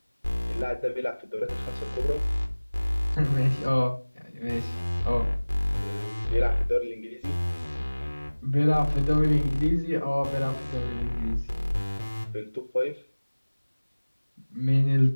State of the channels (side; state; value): both; inverted; correlation -1.00